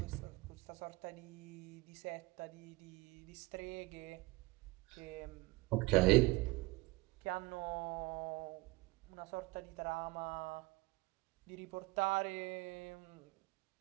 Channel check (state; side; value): quieter; left; 22.3 dB